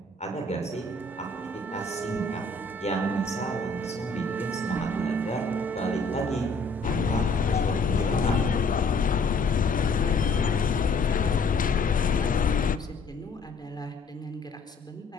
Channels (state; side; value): quieter; right; 3.3 dB